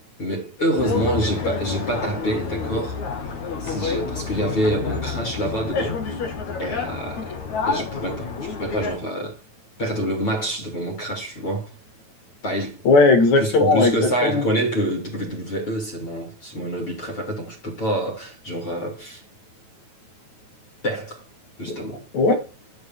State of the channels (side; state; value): right; late; 9.2 ms